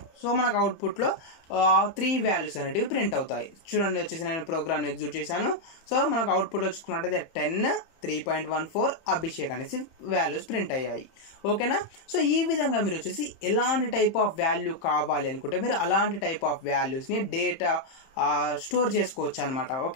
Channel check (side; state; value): right; late; 31 ms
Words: సో మనకు అవుట్పుట్లో 3 వాల్యూస్ అనేటివి ప్రింట్ అవుతాయి. చూడండి, వచ్చేసి నేను ప్రోగ్రామ్ని ఎగ్జిక్యూట్ చేశాను. సో మనకు అవుట్పుట్లో చూసుకున్నట్టయితే 10, 3.14 అభిషేక్ అనేసి వాల్యూస్ ప్రింట్ అయ్యాయి. ఓకేనా. సో ఈ విధంగా మీరు వచ్చేసి ఎలాంటి టైప్ ఆఫ్ వాల్యూ కావాలి అనుకుంటే మీరు అలాంటి టైప్ ఆఫ్ వాల్యూస్ని డేటా స్టోర్ చేసుకోవచ్చు అనమాట.